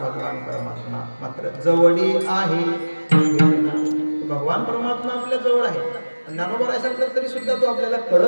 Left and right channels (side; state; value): both; inverted; correlation -1.00